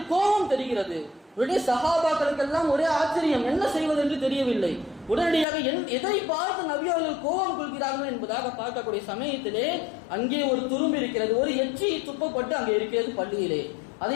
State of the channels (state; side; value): drops out; right; at 5.5 s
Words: கோபம் தெரிகிறது. உடனே சஹாபாக்களுக்கெல்லாம் ஒரே ஆச்சரியம், என்ன செய்வது என்று தெரியவில்லை. உடனடியாக எதை பார்த்து நபி அவர்கள் கோபம் கொள்கிறார்கள் என்பதாக பார்க்கக்கூடிய சமயத்திலே அங்கே ஒரு துரும்பு இருக்கிறது, ஒரு எச்சி துப்பப்பட்டு அங்கே இருக்கிறது பள்ளியிலே.